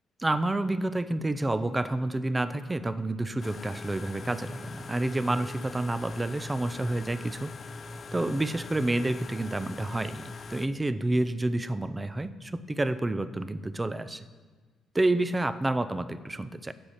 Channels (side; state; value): both; normal; correlation 0.96